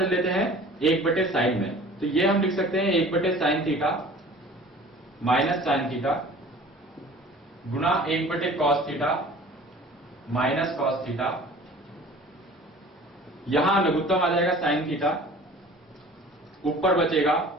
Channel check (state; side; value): normal; both; correlation 0.45